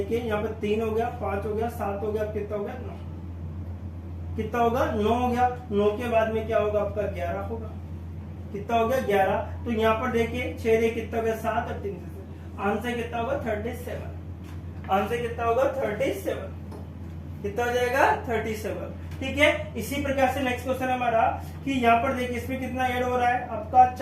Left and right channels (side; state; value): both; identical; correlation 1.00